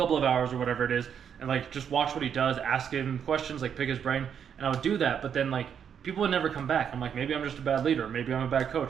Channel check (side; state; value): left; quieter; 8.0 dB